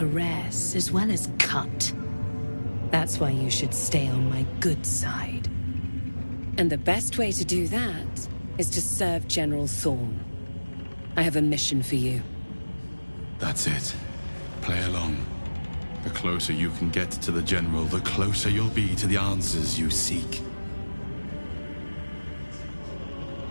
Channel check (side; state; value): both; inverted; correlation -1.00